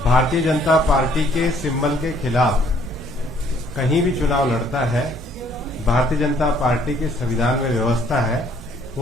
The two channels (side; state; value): both; normal; correlation 0.62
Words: भारतीय जनता पार्टी के सिंबल के खिलाफ कहीं भी चुनाव लड़ता है, भारतीय जनता पार्टी के संविधान में व्यवस्था है,